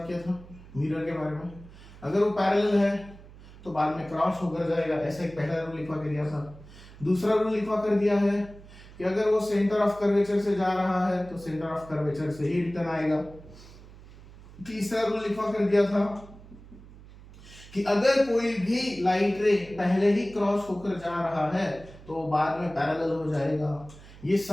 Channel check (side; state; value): right; noise; hum, 19 dB below the sound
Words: किया था, मिरर के बारे में, अगर वो पैरेलल है तो बाद में क्रॉस होकर जाएगा, ऐसा एक पहला रूल लिखवा कर दिया था। दूसरा रूल लिखवा कर दिया है कि अगर वो सेंटर ऑफ कर्वेचर से जा रहा है तो सेंटर ऑफ कर्वेचर से ही रिटर्न आएगा। तीसरा रूल लिखवा कर दिया था कि अगर कोई भी लाइट रे पहले ही क्रॉस होकर जा रहा है तो बाद में पैरेलल हो जाएगा। ये